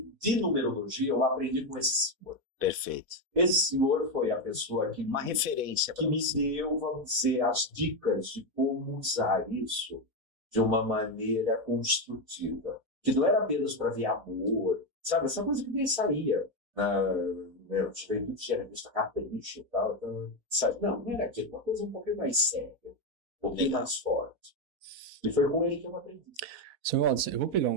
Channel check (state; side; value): late; left; 4.1 ms